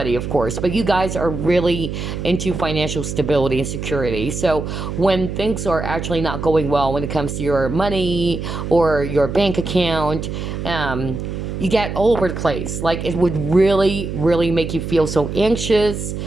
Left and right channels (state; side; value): noise; right; hum, 5 dB below the sound